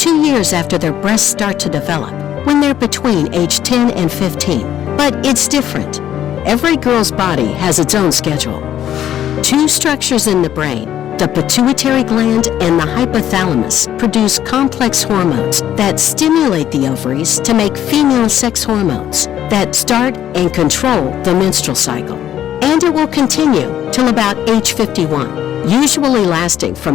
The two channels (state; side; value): quieter; right; 11.1 dB